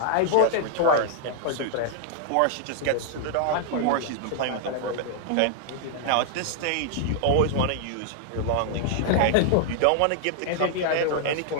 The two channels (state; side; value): different; both; correlation 0.00